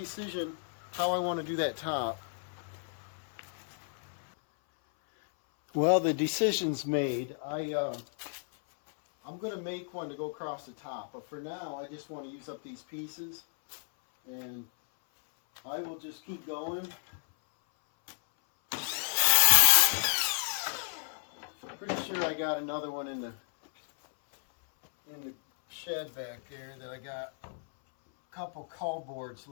how I want to do that top. Well, the decision's made. I'm going to make one to go across the top, but for now I just want to use up these pieces, and I will just keep going. Pretty sure I got another one in the shed back there that I got a couple cull boards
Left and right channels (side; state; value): right; silent; 56 dB below the other